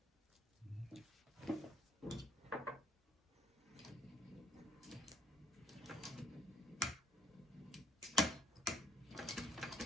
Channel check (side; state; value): both; normal; correlation 0.64